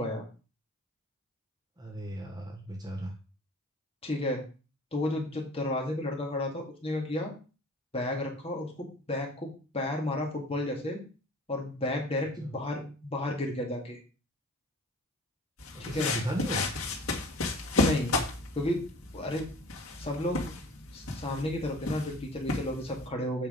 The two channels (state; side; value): normal; both; correlation 0.44